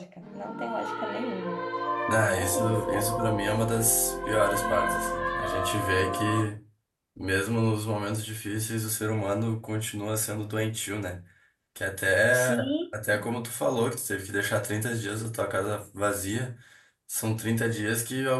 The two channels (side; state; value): both; identical; correlation 1.00